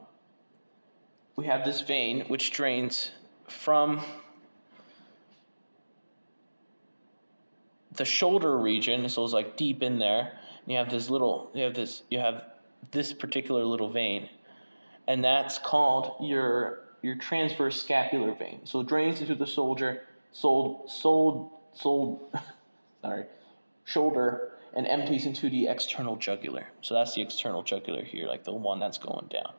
this vein which drains from the shoulder region, so it's like deep in there. And you have this particular little vein, and that's called your transverse scapular vein. So it drains into the shoulder, and empties into the external jugular. So that's the external jugular here, like the one that's going down.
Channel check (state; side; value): inverted; both; correlation -1.00